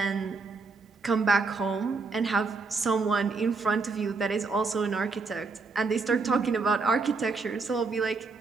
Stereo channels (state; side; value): quieter; left; 4.2 dB